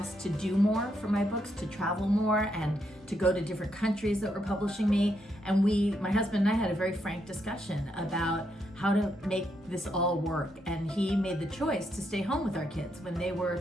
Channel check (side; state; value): both; normal; correlation 0.79